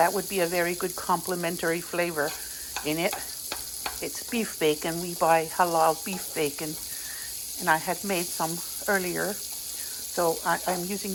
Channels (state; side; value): identical; both; correlation 1.00